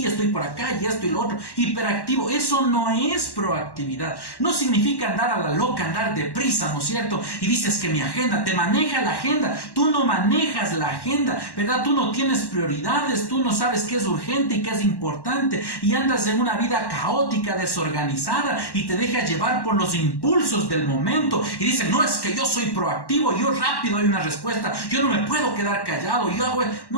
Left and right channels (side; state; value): right; late; 1.1 ms